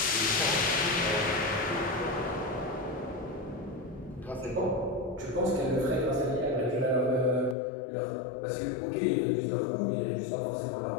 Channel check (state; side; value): drops out; right; at 7.6 s